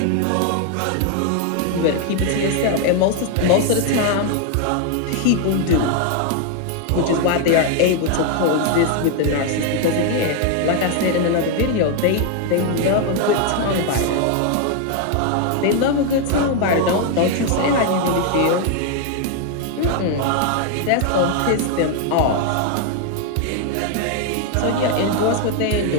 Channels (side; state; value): both; different; correlation 0.01